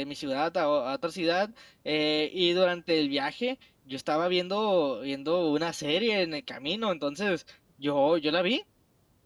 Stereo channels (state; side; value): identical; both; correlation 1.00